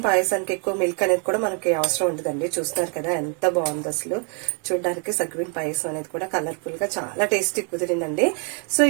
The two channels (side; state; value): left; quieter; 38.4 dB